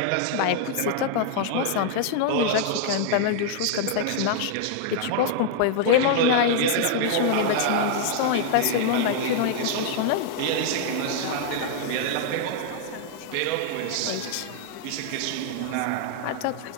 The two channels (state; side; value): different; both; correlation 0.00